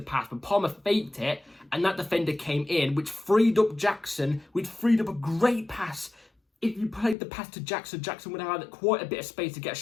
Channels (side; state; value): right; drops out; at 7.2 s